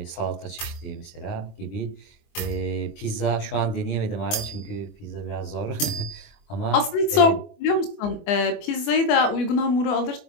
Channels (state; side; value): late; right; 24 ms